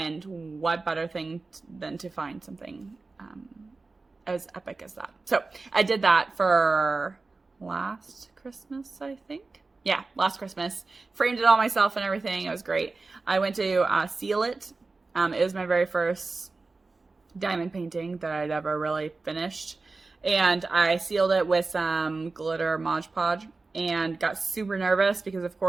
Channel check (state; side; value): quieter; left; 3.7 dB